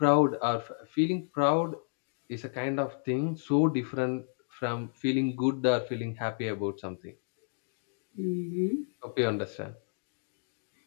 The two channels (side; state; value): right; silent; digital silence